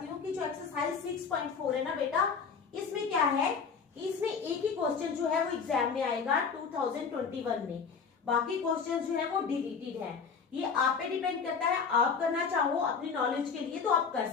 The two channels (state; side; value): quieter; right; 5.8 dB